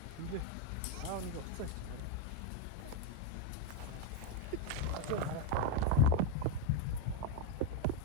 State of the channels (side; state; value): both; different; correlation 0.02